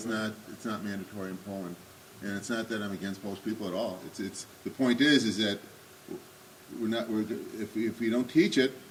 not mandatory in Poland. And it's not that I'm against Polish people at all. It's the point is that if we don't teach it,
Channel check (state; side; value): identical; both; correlation 1.00